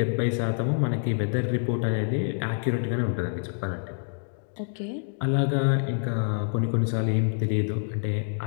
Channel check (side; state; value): right; silent; 60 dB below the other